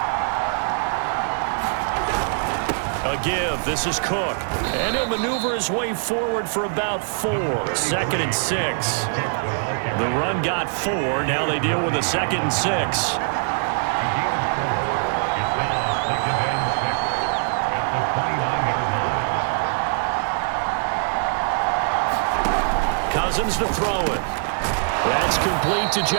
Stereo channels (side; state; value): left; silent; 59 dB below the other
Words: A give. This is Cook. And he'll maneuver his way forward for about 4. 2nd and 6. The run got 4. Now they deal with a 2nd and 6. Cousins to throw it. That's complete to